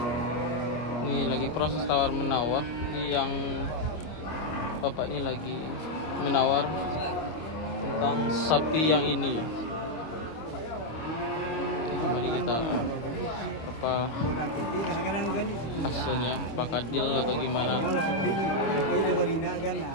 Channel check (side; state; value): right; late; 26 ms